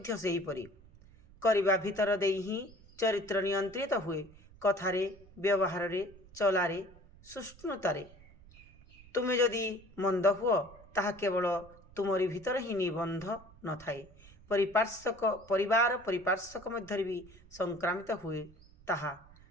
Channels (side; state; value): right; noise; rumble, 23 dB below the sound